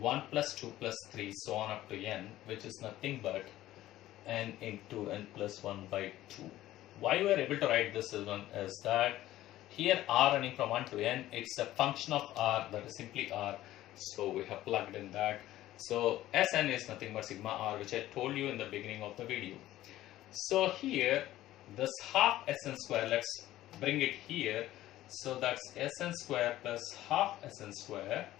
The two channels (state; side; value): quieter; right; 14.7 dB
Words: plus 2 plus 3 so on up to n, which is nothing but n into n plus 1 by 2. Why we are able to write this is that here r running from 1 to n, it's a function of r, that is simply r. So we have plugged in that. So Sn is nothing but sigma r, which I told you in the beginning of the video. So here this half Sn square, let's bring it here. So that's Sn square plus half Sn square,